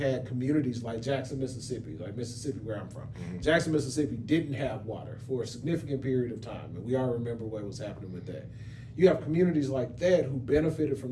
communities like Jackson, Mississippi, like Mississippi, where I'm from. Jackson, Mississippi didn't have water for a significant period of time, and we all remember what was happening with that. You have communities like that who benefited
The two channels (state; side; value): identical; both; correlation 1.00